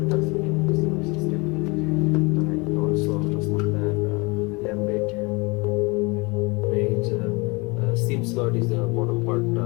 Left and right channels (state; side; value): quieter; right; 27.2 dB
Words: transmitting system. SIM slot is the bottom part